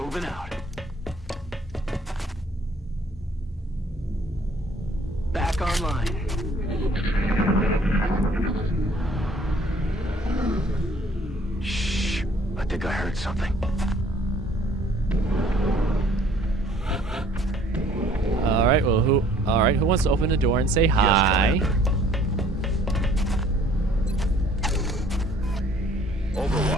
out. Back online. Shh. I think I heard something. All right. Well, who? All right. Who wants to open the door and say hi? Yes,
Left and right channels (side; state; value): both; normal; correlation 0.58